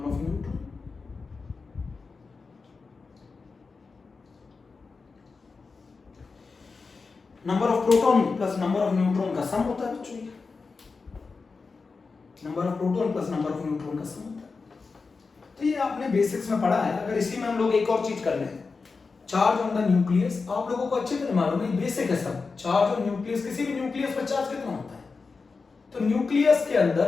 of neutron. Number of proton plus number of neutron का सम होता है बच्चों। Number of proton plus number of neutron का सम होता है। तो ये आपने बेसिक्स में पढ़ा है। अगर इसी में हम लोग एक और चीज कर लें, चार्ज ऑन द न्यूक्लियस, आप लोगों को अच्छी तरह मालूम है, बेसिक है सब। चार्ज ऑन न्यूक्लियस, किसी भी न्यूक्लियस पर चार्ज कितना होता है? तो न्यूक्लियस के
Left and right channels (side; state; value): right; quieter; 4.5 dB